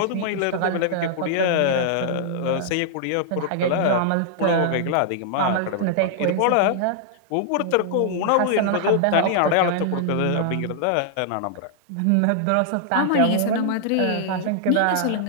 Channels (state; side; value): different; both; correlation -0.01